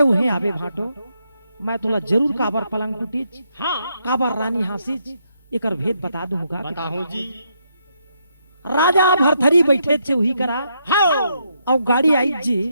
उहे आवे भाटो। मैं तोला जरूर काबर पलंग टूटी, हाँ काबर रानी हंसी, एकर भेद बता दूंगा। बताऊं जी। राजा भरथरी बैठे थे वही करा हाँ और गाड़ी आई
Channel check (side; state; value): both; inverted; correlation -0.77